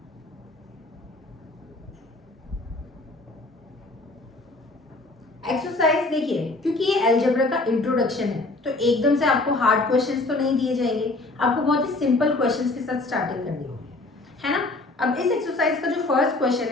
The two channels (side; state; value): right; quieter; 3.1 dB